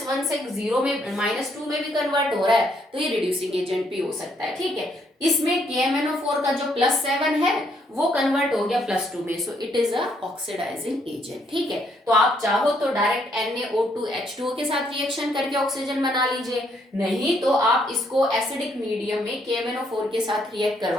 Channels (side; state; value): both; normal; correlation 0.71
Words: से 0 में -2 में भी कन्वर्ट हो रहा है तो ये रिड्यूसिंग एजेंट भी हो सकता है। ठीक है, इसमें KMnO4 का जो +7 है वो कन्वर्ट हो गया +2 में, so it is a oxidising agent. ठीक है, तो आप चाहो तो डायरेक्ट NaO2 H2O के साथ रिएक्शन करके ऑक्सीजन बना लीजिए, नहीं तो आप इसको एसिडिक मीडियम में KMnO4 के साथ रिएक्ट